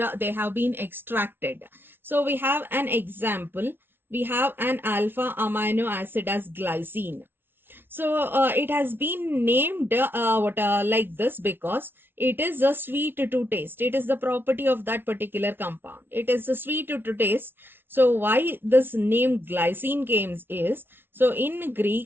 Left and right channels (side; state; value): left; late; 0.11 ms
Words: they have been extracted. So we have an example. We have an alpha amino acid as glycine. So it has been named like this because it is a sweet to taste. It is the property of that particular compound. It is a sweet to taste. So why this name glycine came is, so in